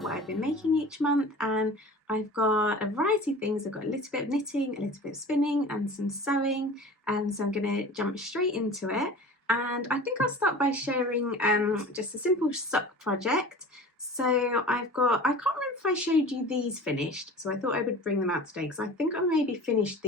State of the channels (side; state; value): both; normal; correlation 0.39